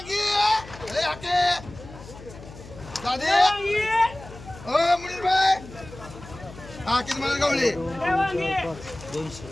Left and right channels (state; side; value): noise; left; hum, 17 dB below the sound